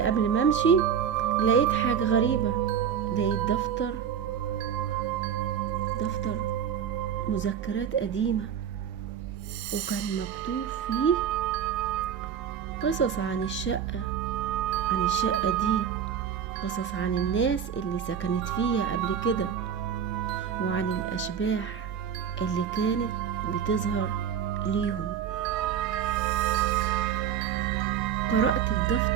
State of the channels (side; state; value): left; quieter; 8.2 dB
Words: ما أمشي لقيت حاجة غريبة. لقيت دفتر مذكرات قديمة، وكان مكتوب فيه قصص عن الشقة دي، قصص عن الناس اللي سكنت فيها قبل كده، وعن الأشباح اللي كانت بتظهر ليهم. قرأت